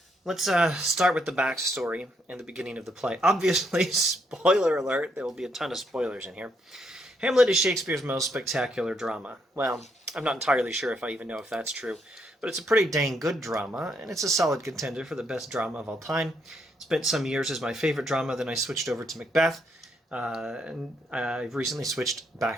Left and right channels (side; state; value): both; normal; correlation 0.75